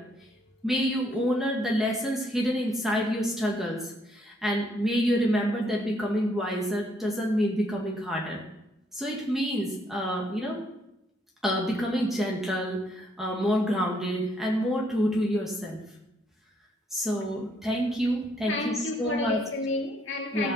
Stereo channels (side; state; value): both; normal; correlation 0.70